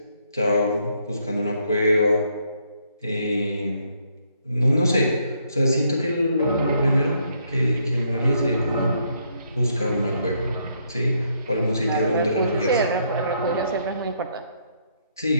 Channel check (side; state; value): both; inverted; correlation -0.72